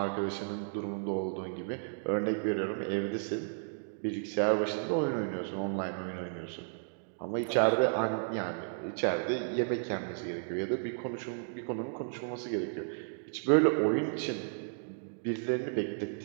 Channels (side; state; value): left; silent; digital silence